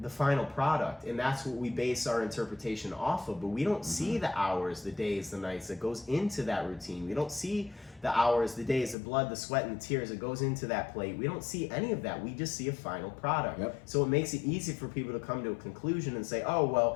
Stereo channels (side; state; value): right; drops out; at 9.0 s